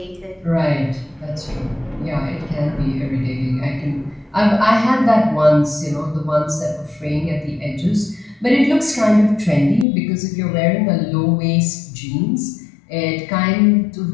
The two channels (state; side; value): drops out; right; at 9.9 s